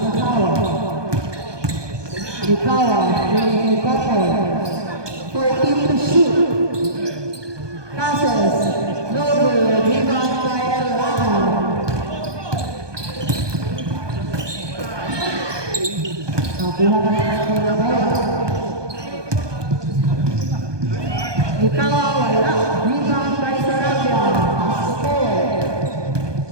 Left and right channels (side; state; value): left; late; 1.2 ms